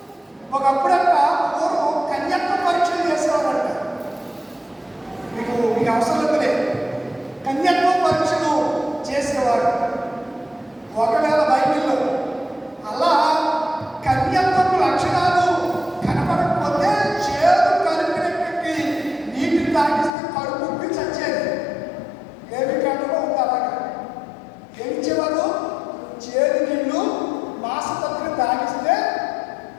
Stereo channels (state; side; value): drops out; right; at 20.1 s